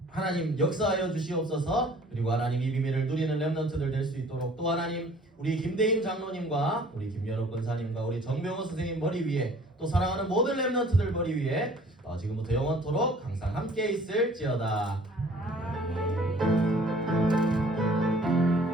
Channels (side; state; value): both; normal; correlation 0.53